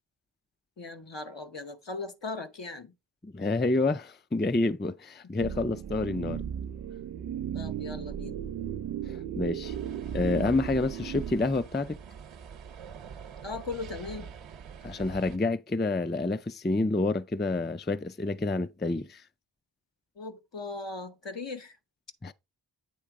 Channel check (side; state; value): both; normal; correlation 0.62